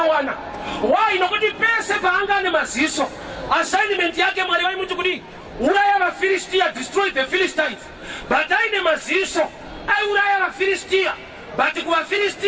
Why? Nokuti pese paanga ane maziso assignment yake Mwari vaimuti kuti uraya vaFilistia, destroy the Philistines. But aine maziso aiuraya vaFilistia, but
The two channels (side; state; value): both; identical; correlation 1.00